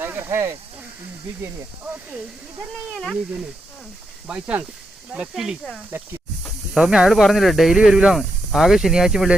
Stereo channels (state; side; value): normal; both; correlation 0.83